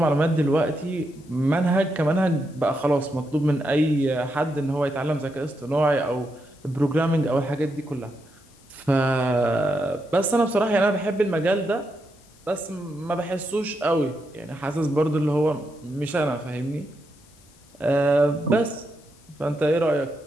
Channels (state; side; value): noise; left; hiss, 29 dB below the sound